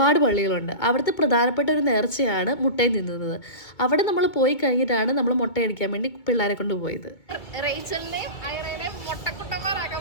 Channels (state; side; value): late; right; 2.2 ms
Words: പള്ളികളുണ്ട്. അവിടുത്തെ പ്രധാനപ്പെട്ട ഒരു നേർച്ചയാണ് മുട്ടയിൽ നിന്നുന്നത്. അവിടെ നമ്മൾ പോയി കഴിഞ്ഞിട്ടാണ് നമ്മൾ മുട്ടയടിക്കാൻ വേണ്ടി പിള്ളേരെ കൊണ്ട് പോയത്. റേച്ചലിനെയും ഐറേനെയും മുട്ടക്കുട്ടന്മാരാക്കാൻ